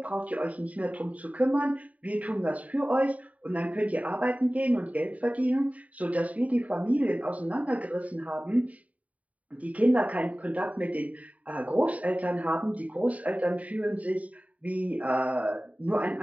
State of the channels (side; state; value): left; late; 0.069 ms